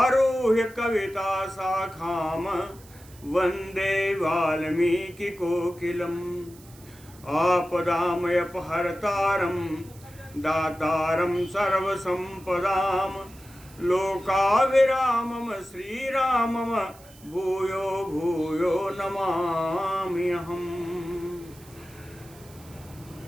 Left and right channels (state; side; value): noise; right; hiss, 24 dB below the sound